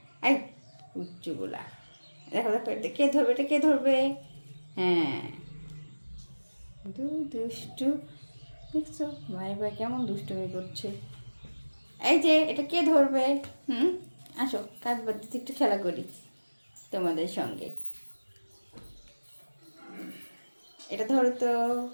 এই উচ্চগুলা, দেখো দেখো এটা কে ধরবে, এটা কে ধরবে? হ্যাঁ দুষ্টু, দেখছো ভাই ভাই কেমন দুষ্টুমি করছে। এই যে এটা কে ধরবে? আসো কাজ বাদ দিতে একটু খেলা করি তোমাদের সঙ্গে। এটা ধরো তো,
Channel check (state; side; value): inverted; both; correlation -1.00